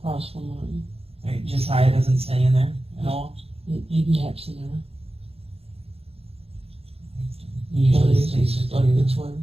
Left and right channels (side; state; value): left; late; 0.29 ms